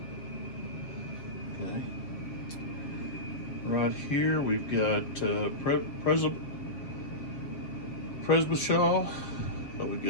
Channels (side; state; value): right; late; 7.5 ms